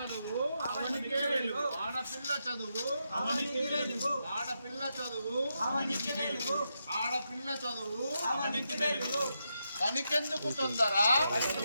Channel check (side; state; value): both; inverted; correlation -0.84